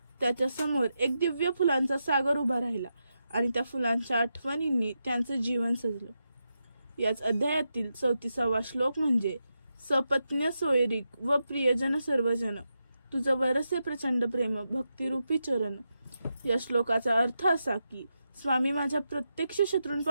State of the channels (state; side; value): inverted; both; correlation -0.87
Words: त्याच्या समोर एक दिव्य फुलांचा सागर उभा राहिला आणि त्या फुलांच्या आठवणींनी त्यांचं जीवन सजलं. याच अध्यायातील 34वा श्लोक म्हणजे सपत्न्य सोयरीक व प्रियजन सर्वजन तुझं वरसे प्रचंड प्रेम भक्तिरूपी चरण. या श्लोकाचा अर्थ असा की स्वामी माझ्या प्रत्यक्ष